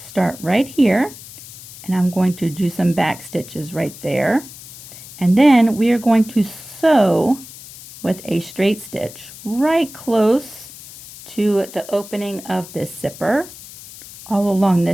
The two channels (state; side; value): noise; left; hiss, 16 dB below the sound